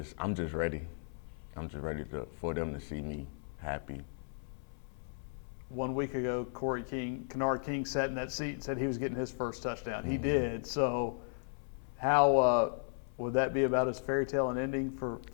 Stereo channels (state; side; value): silent; right; 54 dB below the other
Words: ready. I'm just ready for them to see me happy. 1 week ago, Kennard King sat in that seat and said he was getting his first touchdown. He did. So how would that be about as fairy tale an ending for